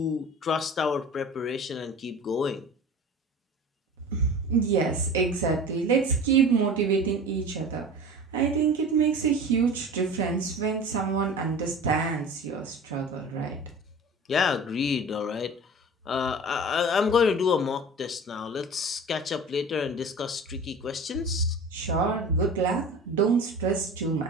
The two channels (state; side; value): normal; both; correlation 0.37